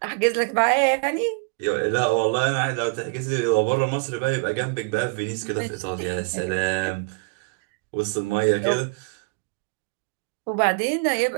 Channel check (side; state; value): left; quieter; 31.1 dB